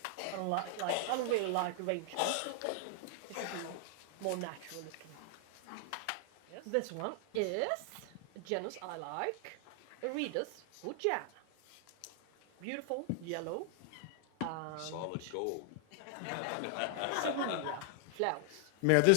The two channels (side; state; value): both; different; correlation 0.00